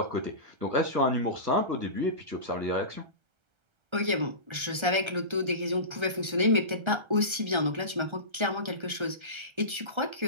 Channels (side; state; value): left; late; 1.3 ms